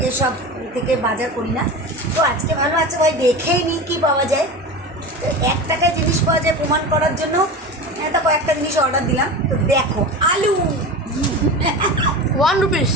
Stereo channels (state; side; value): normal; both; correlation 0.28